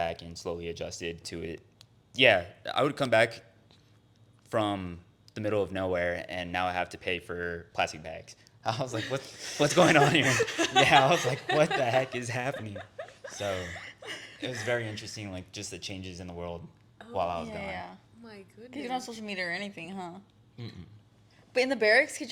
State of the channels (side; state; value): both; identical; correlation 1.00